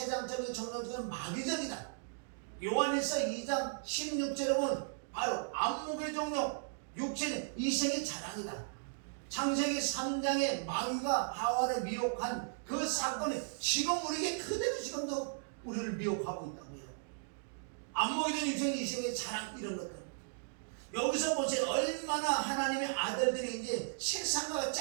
정욕적인 마귀적이다. 요한일서 2장 16절에 보면 바로 안목의 정욕, 육체는 이생의 자랑이다. 창세기 3장에 마귀가 하와를 미혹한 그 사건이 지금 우리에게 그대로 지금도 우리를 미혹하고 있다고요. 안목의 정욕, 육체는 이생의 자랑, 이런 것들. 여기서 보세요. 얼마나 하나님의 아들들이 이제 세상과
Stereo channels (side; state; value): left; silent; digital silence